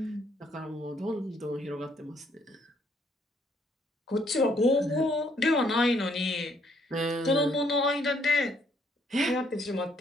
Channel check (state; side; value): normal; both; correlation 0.68